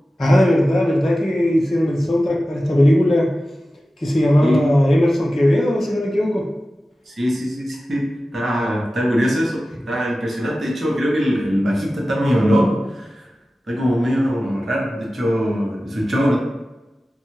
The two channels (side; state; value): both; normal; correlation 0.95